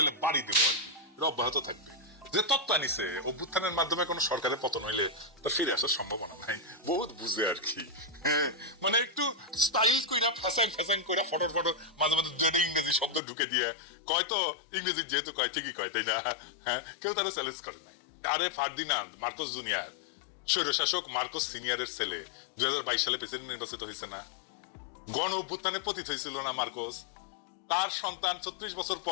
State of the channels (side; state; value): right; drops out; at 13.2 s